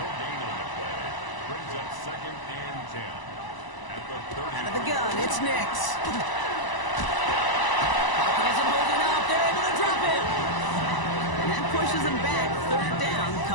Brings up 2nd and 10. At the 30. Out of the gun, it's Nix. Pocket isn't holding up. They're able to drop him. And that pushes him back. 3rd down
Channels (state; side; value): late; right; 1.0 ms